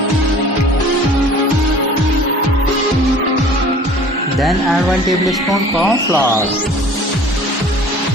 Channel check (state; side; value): normal; both; correlation 0.47